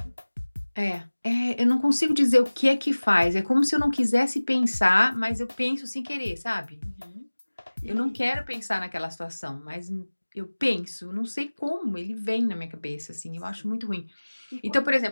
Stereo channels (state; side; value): inverted; both; correlation -1.00